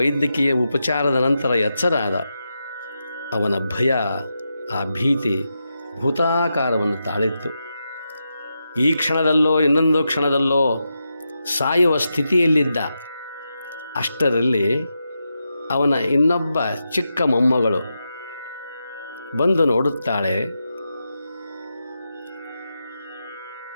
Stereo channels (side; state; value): both; inverted; correlation -0.87